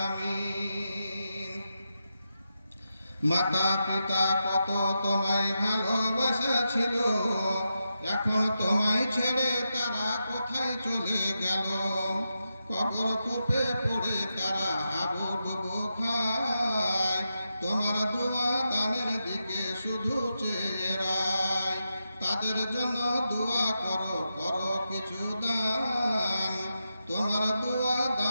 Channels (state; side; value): inverted; both; correlation -0.87